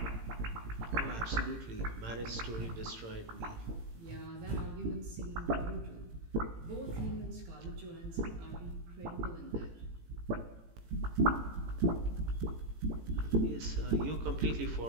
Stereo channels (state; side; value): late; left; 18 ms